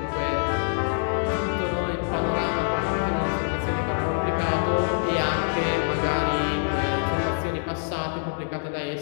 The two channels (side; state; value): right; silent; digital silence